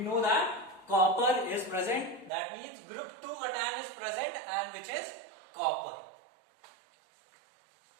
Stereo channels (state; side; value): drops out; left; at 2.3 s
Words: know that copper is present. That means group 2 cation is present, and which is copper.